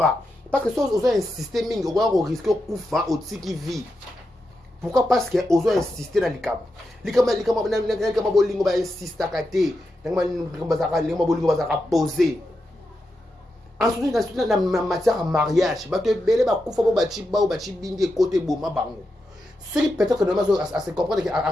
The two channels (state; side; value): normal; both; correlation 0.87